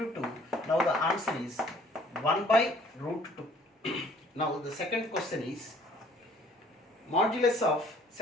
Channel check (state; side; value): normal; both; correlation 0.56